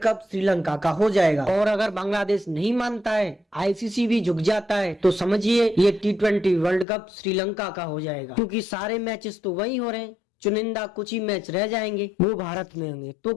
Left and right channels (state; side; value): drops out; right; at 6.9 s